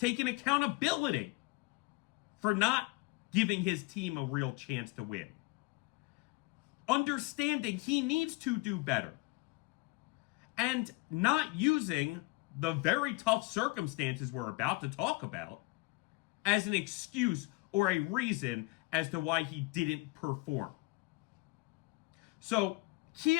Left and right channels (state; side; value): quieter; right; 24.7 dB